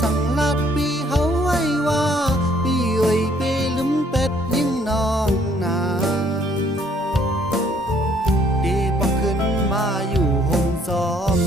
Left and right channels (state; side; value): normal; both; correlation 0.64